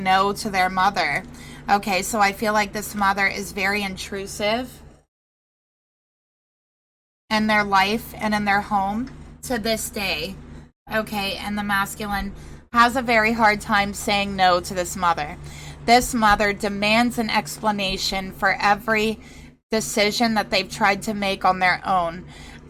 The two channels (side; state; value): both; identical; correlation 1.00